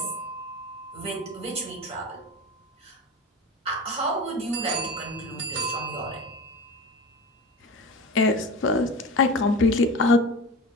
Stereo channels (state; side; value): normal; both; correlation 0.31